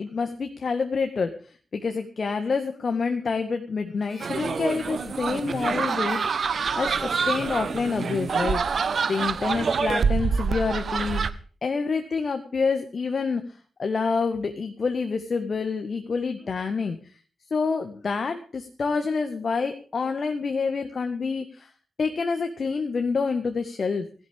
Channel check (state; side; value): normal; both; correlation 0.86